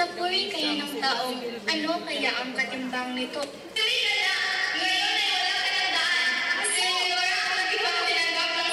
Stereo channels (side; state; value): both; identical; correlation 1.00